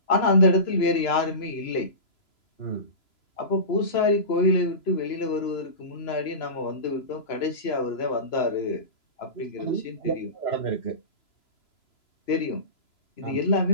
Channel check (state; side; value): late; right; 3.0 ms